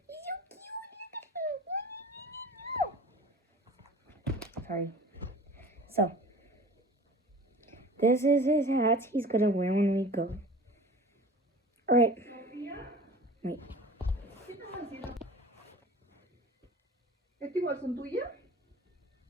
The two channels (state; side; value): normal; both; correlation 0.41